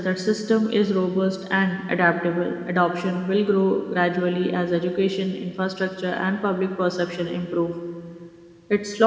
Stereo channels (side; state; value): both; identical; correlation 1.00